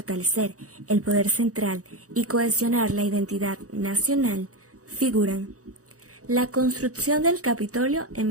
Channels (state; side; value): late; left; 0.66 ms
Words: el poder central y cohesionar la identidad nacional, figuran la construcción del Capitolio en